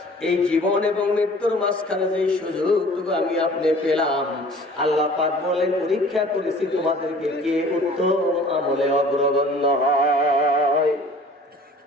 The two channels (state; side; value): normal; both; correlation 0.49